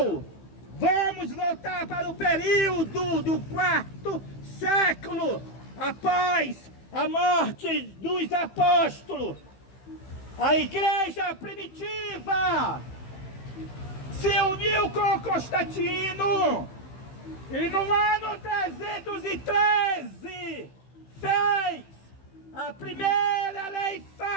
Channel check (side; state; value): right; late; 15 ms